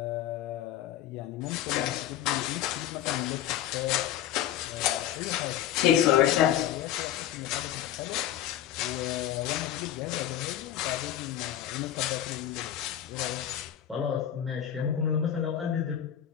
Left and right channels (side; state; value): right; quieter; 11.3 dB